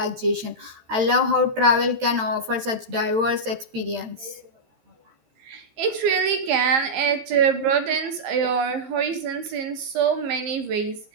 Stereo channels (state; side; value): late; left; 13 ms